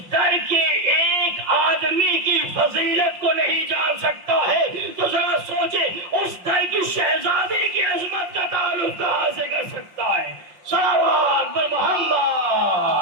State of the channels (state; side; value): late; left; 5.7 ms